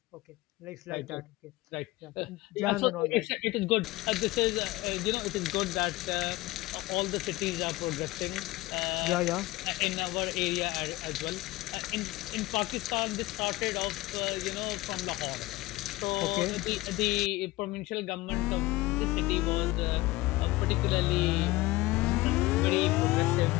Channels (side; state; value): right; quieter; 19.4 dB